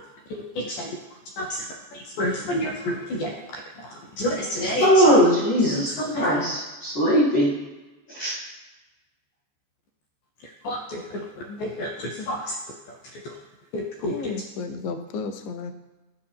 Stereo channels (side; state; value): right; late; 14 ms